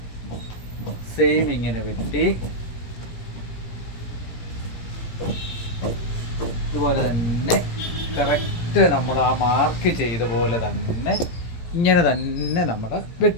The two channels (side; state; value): right; late; 17 ms